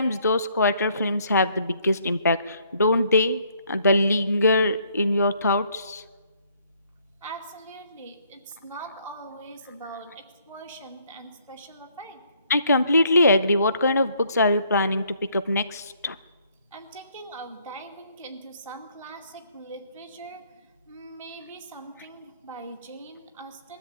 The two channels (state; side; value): inverted; both; correlation -0.66